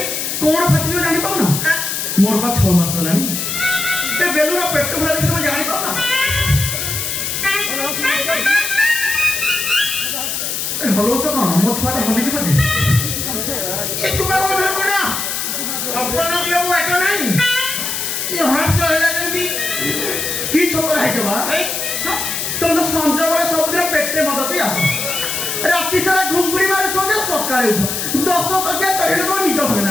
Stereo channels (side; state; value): left; noise; hiss, 2 dB below the sound